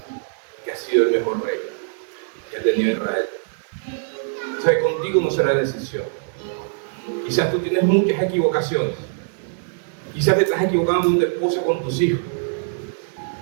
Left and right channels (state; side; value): silent; left; digital silence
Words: que ha sido el mejor rey que ha tenido Israel. O sea, contigo no será decisión. Quizás tú tienes muchas equivocaciones. Quizás te estás equivocando con tu esposa, con tus hijos.